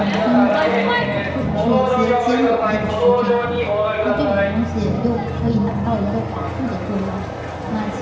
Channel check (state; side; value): identical; both; correlation 1.00